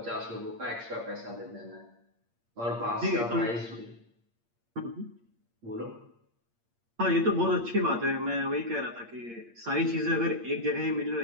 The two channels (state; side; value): late; left; 8.6 ms